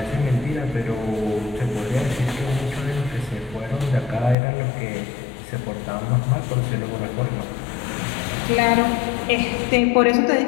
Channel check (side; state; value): right; drops out; at 4.4 s